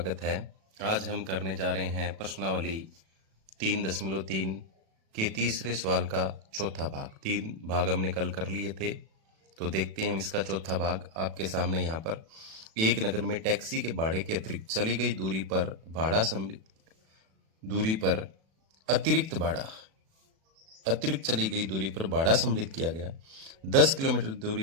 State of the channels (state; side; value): late; left; 37 ms